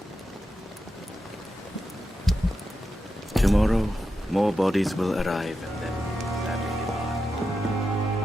Tomorrow, more bodies will arrive and then sadly depart.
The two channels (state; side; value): normal; both; correlation 0.88